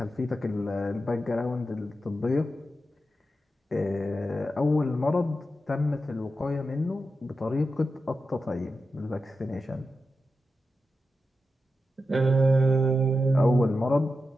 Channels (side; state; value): both; normal; correlation 0.89